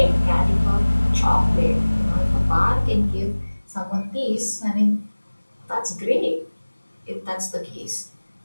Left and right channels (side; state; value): both; inverted; correlation -1.00